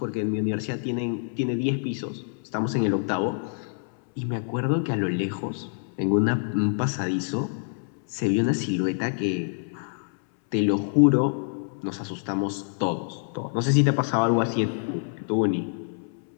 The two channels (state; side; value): silent; right; 61 dB below the other